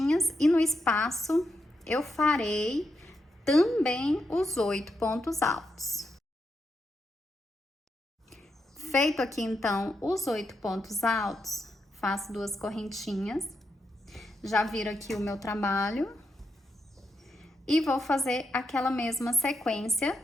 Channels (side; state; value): both; normal; correlation 0.83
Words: e no espaço eu farei também os 8 pontos altos. Feito aqui, então, os 8 pontos altos, faço 2 correntinhas. Já viro aqui o meu trabalho. E vou fazer aquela mesma sequência,